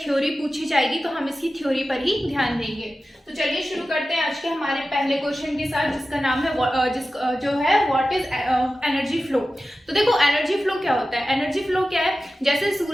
पूछी जाएगी, तो हम इसकी थ्योरी पर ही ध्यान देंगे। तो चलिए शुरू करते हैं आज के हमारे पहले क्वेश्चन के साथ, जिसका नाम है जो है व्हाट इज एनर्जी फ्लो। तो देखो एनर्जी फ्लो क्या होता है। एनर्जी फ्लो क्या है, जैसे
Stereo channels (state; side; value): normal; both; correlation 0.94